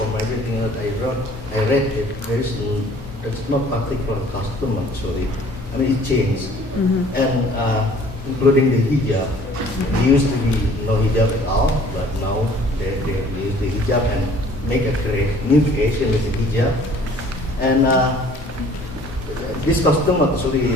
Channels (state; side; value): normal; both; correlation 0.54